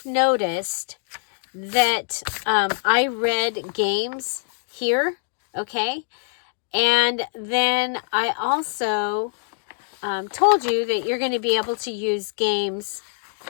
noticed that I read games here, okay? And then I also told you that you're going to be able to use games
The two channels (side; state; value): right; silent; digital silence